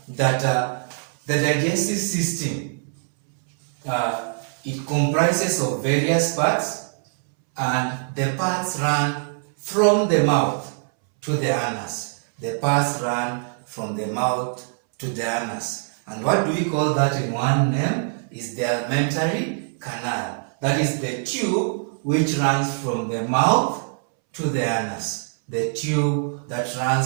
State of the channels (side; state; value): left; silent; 63 dB below the other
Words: that the digestive system, it comprises of various parts, and the parts run from the mouth to the anus. The parts run from the mouth to the anus. And what do we call that in one name? Is the alimentary canal. That is the tube which runs from the mouth to the anus. The tube that